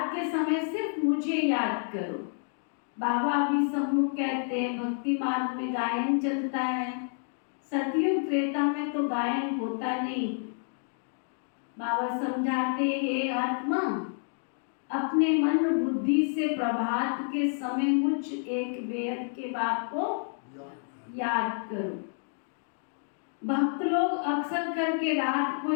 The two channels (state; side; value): silent; right; 58 dB below the other